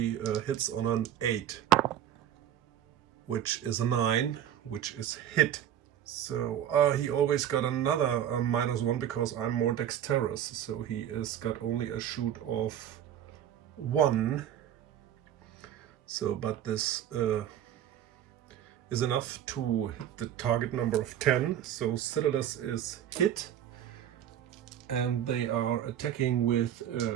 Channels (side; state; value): left; quieter; 10.6 dB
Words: hits on an 8, which is a 9, which is hit. So he always got another -1 because I'm more dexterous. So he is got only a shoot of 1. So, but this is enough to hit the target number of 10. So Xiodulus is hit, and they are attacking with